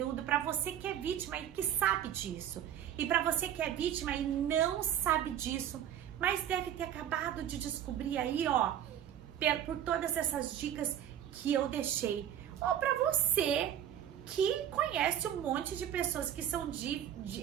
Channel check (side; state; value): left; quieter; 10.3 dB